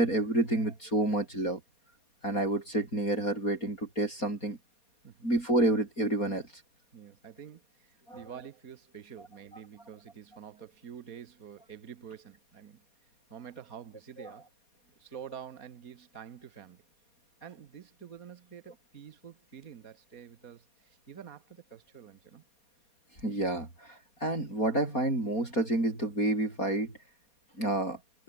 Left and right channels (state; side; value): late; right; 4.2 ms